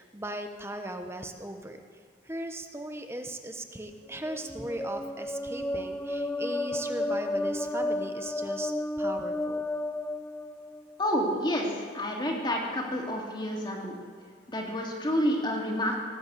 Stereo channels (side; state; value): both; normal; correlation 0.62